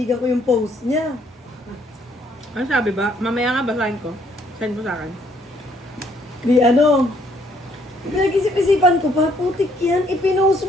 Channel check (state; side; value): normal; both; correlation 0.67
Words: ko yung post niya. Ano sabi ba? Mamaya nga basahin ko. Send mo sa akin. Pinag-isip-isipan ko pa, putik yan, ipinost